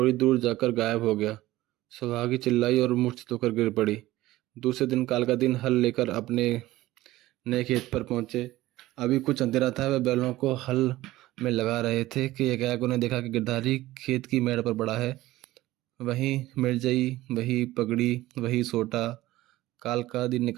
दूर जाकर गायब हो गया। सुहागी चिल्लाई और मूर्छित होकर गिर पड़ी। दूसरे दिन काल का दिन हल लेकर अपने नए खेत पर पहुंचे। अभी कुछ अंधेरा था। वह बैलों को हल में लगा रहे थे कि एकाएक उन्हें देखा कि गिरधारी खेत की मेड़ पर पड़ा है। वही मिर्जई, वही पगड़ी, वही सोटा। काल का दिन ने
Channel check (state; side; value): quieter; left; 16.8 dB